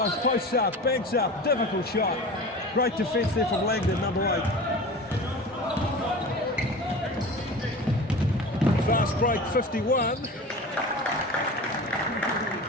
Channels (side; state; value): both; normal; correlation 0.34